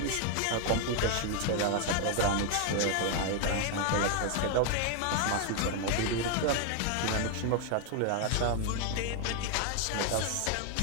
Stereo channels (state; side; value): different; both; correlation 0.00